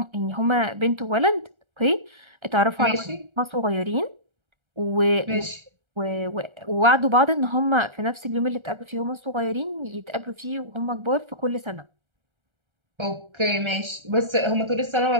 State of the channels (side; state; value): left; late; 1.3 ms